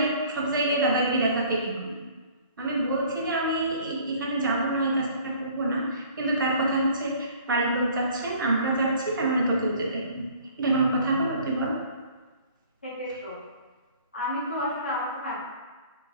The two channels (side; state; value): both; inverted; correlation -0.52